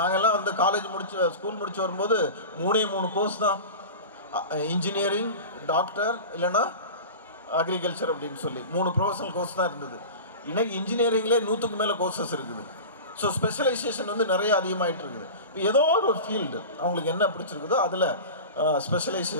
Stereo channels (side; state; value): both; inverted; correlation -0.31